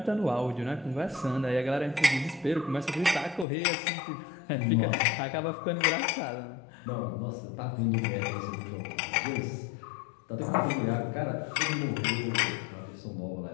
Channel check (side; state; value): right; drops out; at 3.5 s